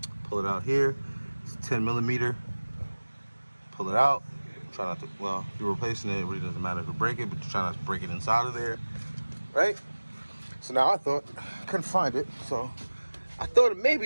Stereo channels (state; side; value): inverted; both; correlation -1.00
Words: pull it out here. It's 10 millimeter. Pull it out. Try not to, well, if you're replacing it, it really doesn't matter if you break it, but you try not to break it inside of there, right? So now I thought, I couldn't find it, so I thought it